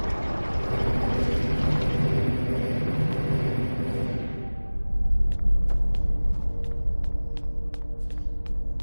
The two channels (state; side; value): inverted; both; correlation -1.00